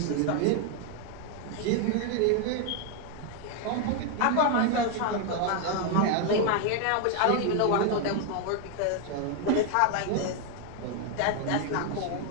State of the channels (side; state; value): both; different; correlation 0.01